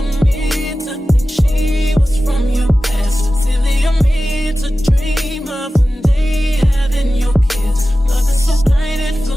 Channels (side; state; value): both; normal; correlation 0.95